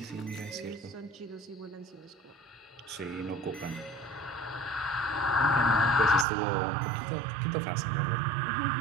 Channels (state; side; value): drops out; left; at 6.2 s